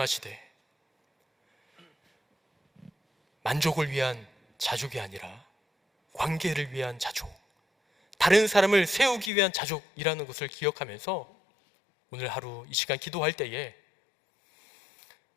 만족을 위한 자족이 아니라 관계를 위한 자족, 다른 사람을 세우기 위한 자족이라는 것을 기억하면서 오늘 하루 이 시간 기도할 때에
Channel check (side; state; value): right; drops out; at 9.3 s